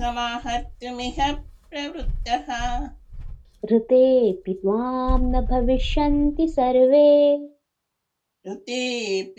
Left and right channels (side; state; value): both; identical; correlation 1.00